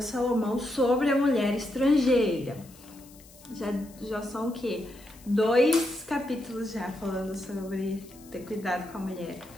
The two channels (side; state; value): left; noise; hiss, 23 dB below the sound